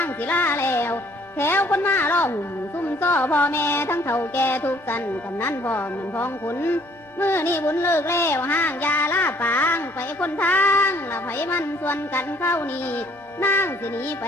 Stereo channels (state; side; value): normal; both; correlation 0.60